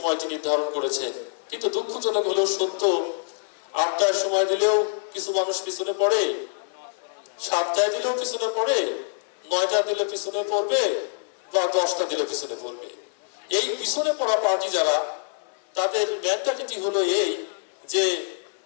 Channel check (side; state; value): right; silent; 60 dB below the other